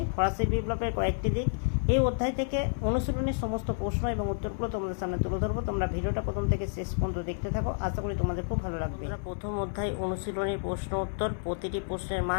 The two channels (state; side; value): silent; right; 58 dB below the other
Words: ফরাসি বিপ্লবের কয়েকটি দিক এই অধ্যায় থেকে অনুশীলনের সমস্ত প্রশ্ন এবং উত্তরগুলো তোমাদের সামনে তুলে ধরবো। তোমরা ভিডিওটা প্রথম থেকে শেষ পর্যন্ত দেখতে থাকো, আশা করি তোমাদের খুব ভালো লাগবে। প্রথম অধ্যায় অনুশীলনী প্রশ্ন উত্তর, প্রতিটি প্রশ্নের